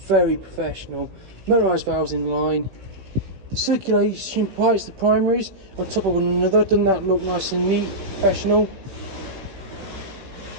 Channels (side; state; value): left; late; 16 ms